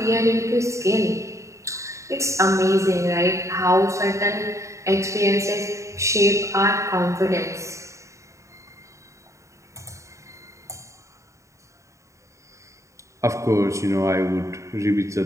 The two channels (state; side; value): late; left; 0.15 ms